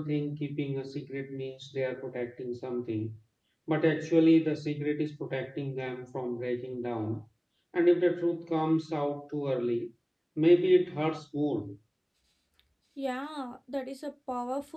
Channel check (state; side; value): identical; both; correlation 1.00